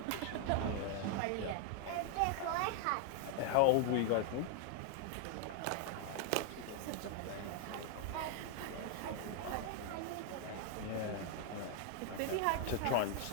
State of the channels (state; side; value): different; both; correlation 0.00